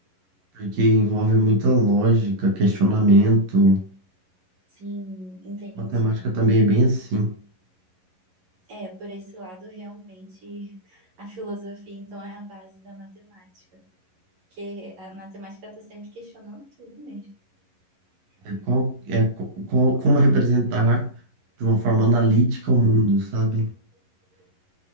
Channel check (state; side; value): late; left; 11 ms